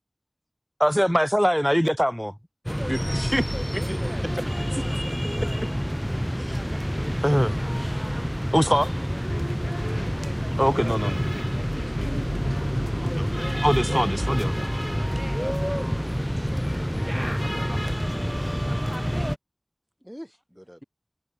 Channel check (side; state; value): both; identical; correlation 1.00